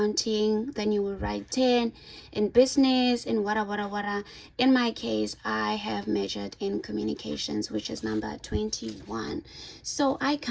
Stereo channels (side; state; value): both; identical; correlation 1.00